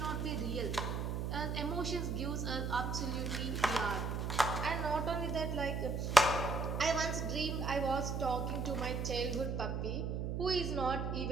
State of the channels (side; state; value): right; noise; hum, 1 dB below the sound